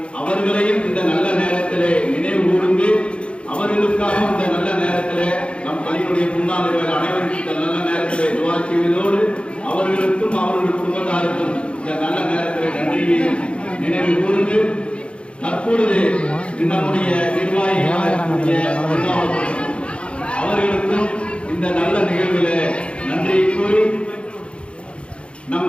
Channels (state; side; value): late; right; 0.058 ms